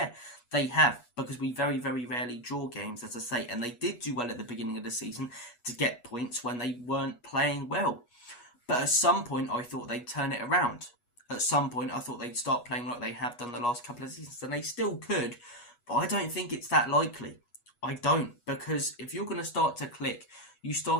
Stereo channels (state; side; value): late; right; 8.3 ms